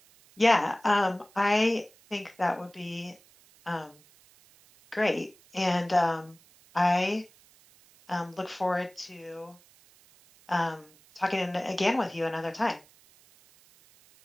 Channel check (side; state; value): right; noise; hiss, 28 dB below the sound